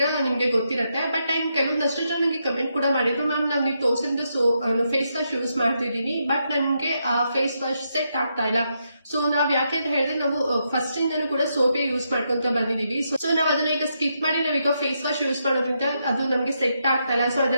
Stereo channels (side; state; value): both; inverted; correlation -0.81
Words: ನಿಮ್ಗೆ ಗೊತ್ತಿರುತ್ತೆ. ಬಟ್ ಕೆಲವೊಂದಷ್ಟು ಜನ ನನಗೆ ಕಮೆಂಟ್ ಕೂಡ ಮಾಡಿದ್ರು, ಮ್ಯಾಮ್ ನಾವು ನೀವು ತೋರಿಸಿದ ಫೇಸ್ ವಾಶ್ ಯೂಸ್ ಮಾಡ್ತಿದ್ದೀನಿ, ಬಟ್ ನಮ್ಗೆ ಆ ಫೇಸ್ ವಾಶ್ ಸೆಟ್ ಆಗ್ತಾ ಇಲ್ಲ. ಸೊ ನಾವ್ ಯಾಕೆ ಅಂತ ಹೇಳಿದ್ರೆ, ನಾವು ಫಸ್ಟ್ ಇಂದನೂ ಕೂಡ ಸೋಪೇ ಯೂಸ್ ಮಾಡ್ಕೊಂತ ಬಂದಿದೀವಿ. ಸೊ ನಾವ್ ಅದನ್ನ ಈಗ ಸ್ಕಿಪ್ ಮಾಡಿ ನಾವೀಗ ಫೇಸ್ ವಾಶ್ ಯೂಸ್ ಮಾಡೋದ್ರಿಂದ ಅದು ನಮ್ಗೆ ಸೆಟ್ ಆಗ್ತಾ ಇಲ್ಲ. ಸೊ